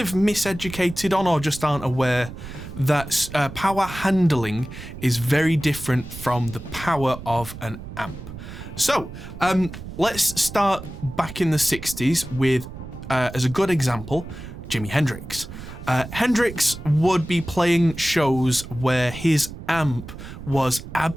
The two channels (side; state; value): right; noise; rumble, 12 dB below the sound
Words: miseducated on or just aren't aware that power handling is very different from the power of an amp. So let's start back in the 60s with, as a good example, Jimi Hendrix. Hendrix would be playing shows where his amp was